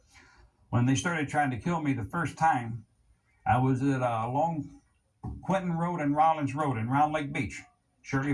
When they started trying to kill me the first time, I was at along Quentin Road and Rollins Road in Round Lake Beach,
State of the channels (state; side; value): identical; both; correlation 1.00